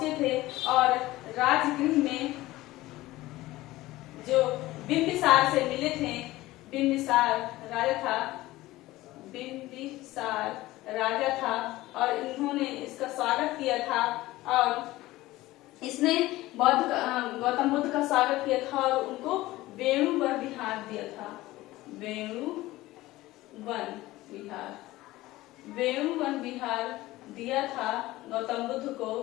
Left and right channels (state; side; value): quieter; right; 17.7 dB